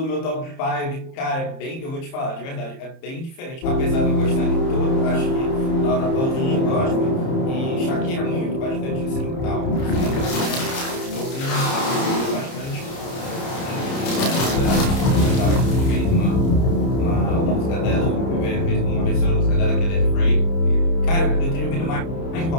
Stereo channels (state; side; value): late; right; 30 ms